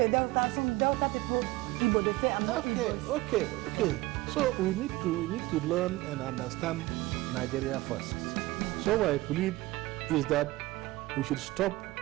Delta, some Delta people, Igbo, they say I'm not Igbo. Okay. So we need to learn and understand Nigeria first. So what I plead is that we should stop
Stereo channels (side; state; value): left; quieter; 19.5 dB